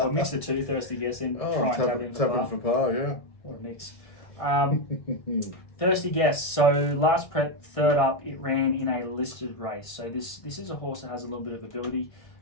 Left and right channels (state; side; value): late; right; 1.5 ms